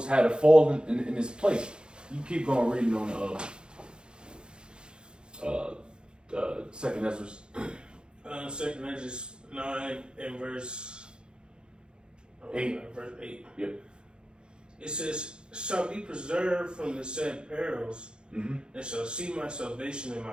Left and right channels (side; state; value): left; late; 0.050 ms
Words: had to fall in this place. You keep going reading on Second Esdras. Second Esdras 9 and verse 8. Verse 8. Yep. It says, "Shall be preserved from the said perils, and shall see my salvation in